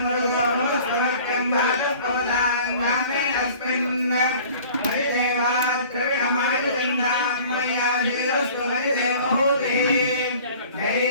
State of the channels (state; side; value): inverted; both; correlation -0.47